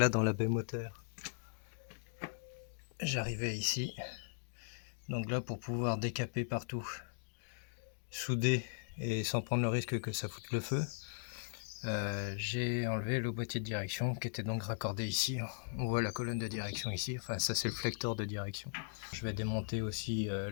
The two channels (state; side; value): silent; right; digital silence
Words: dans la baie moteur, j'arrivais ici, donc là pour pouvoir décaper partout, souder et sans prendre le risque que ça foute le feu, j'ai enlevé le boîtier de direction qui était donc raccordé ici. On voit la colonne de direction ici, enfin ça c'est le flecteur de direction. Je vais démonter aussi